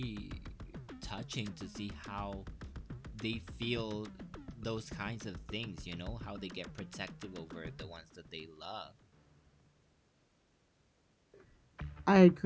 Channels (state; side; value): identical; both; correlation 1.00